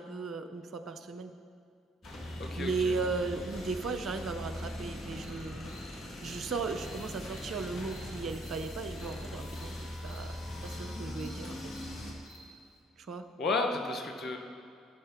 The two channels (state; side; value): normal; both; correlation 0.61